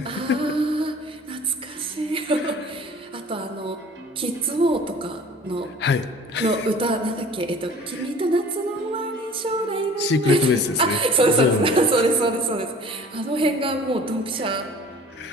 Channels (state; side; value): normal; both; correlation 0.47